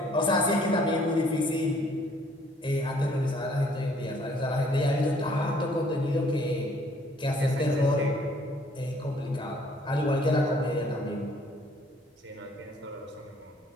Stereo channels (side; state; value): both; normal; correlation 0.61